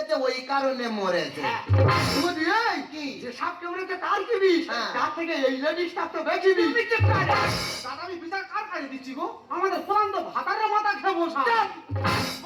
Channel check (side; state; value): both; identical; correlation 1.00